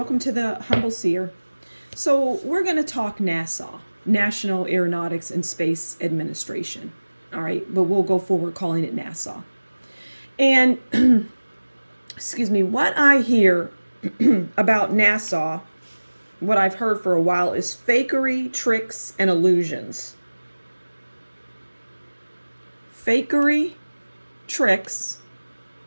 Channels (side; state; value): both; inverted; correlation -1.00